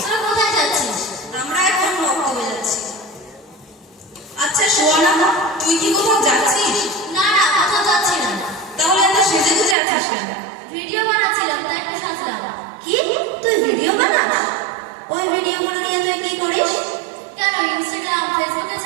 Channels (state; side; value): drops out; left; at 9.8 s